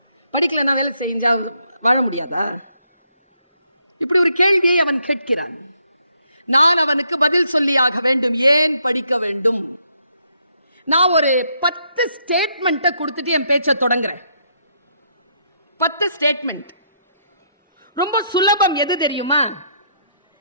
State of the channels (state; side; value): inverted; both; correlation -0.73